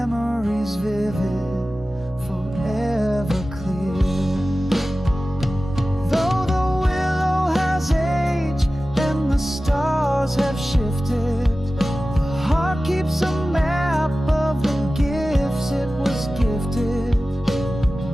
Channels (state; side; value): normal; both; correlation 0.96